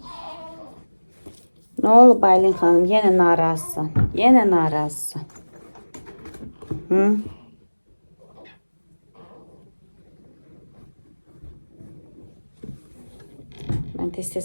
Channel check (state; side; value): inverted; both; correlation -1.00